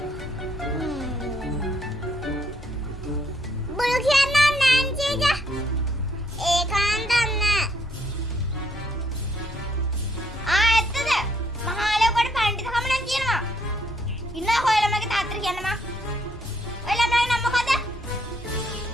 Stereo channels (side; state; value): both; normal; correlation 0.70